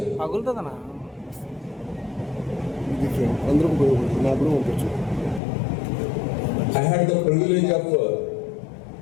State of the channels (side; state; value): right; drops out; at 5.4 s